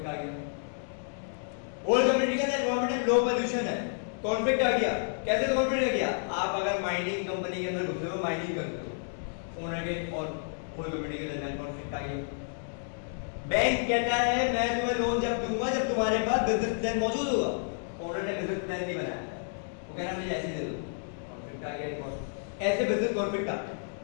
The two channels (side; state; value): right; silent; digital silence